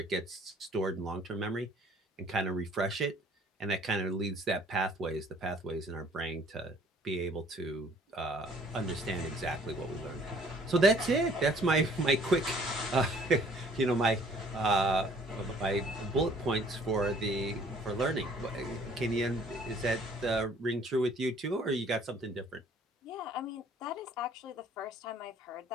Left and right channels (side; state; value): both; normal; correlation 0.57